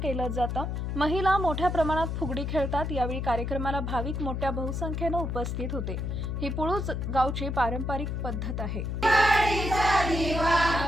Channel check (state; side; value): noise; left; hum, 2 dB below the sound